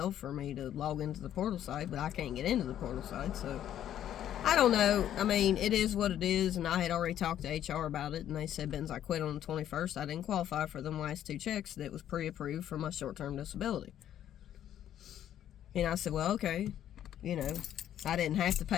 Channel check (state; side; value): quieter; right; 11.0 dB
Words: for me to log into the portal site, but I can't get into the portal site, so I don't know. I mean, it is what it is, and I had already talked to HR about it, and they said, I quit on the 21st. I didn't qualify for them last 2 checks that was pre-approved for my short-term disability. And I said, well, okay, you know, I didn't have to